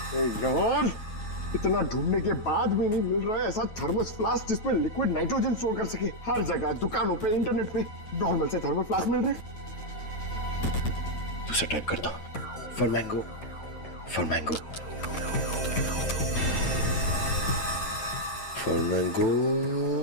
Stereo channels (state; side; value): late; right; 9.2 ms